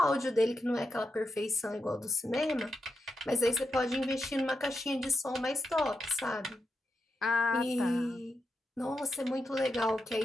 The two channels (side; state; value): both; normal; correlation 0.86